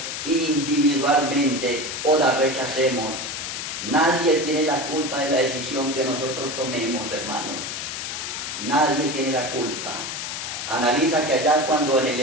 individualmente o la rechacemos. Nadie tiene la culpa de la decisión que nosotros tomemos, hermanos. Nadie tiene la culpa. Analiza que allá cuando en el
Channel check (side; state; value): left; noise; hiss, 5 dB below the sound